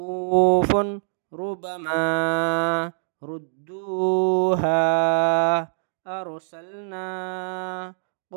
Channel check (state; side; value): silent; left; digital silence